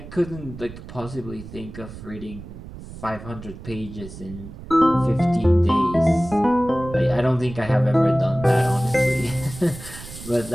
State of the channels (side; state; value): right; noise; rumble, 14 dB below the sound